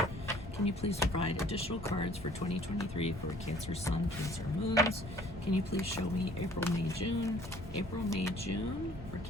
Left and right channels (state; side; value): normal; both; correlation 0.55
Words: Can you please provide additional cards for 2023 for Cancer Sun, Cancer Moons? Can you please show me April, May, June? April, May, June for